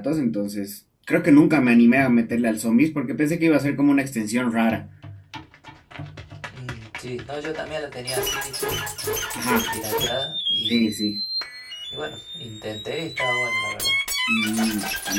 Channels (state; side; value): identical; both; correlation 1.00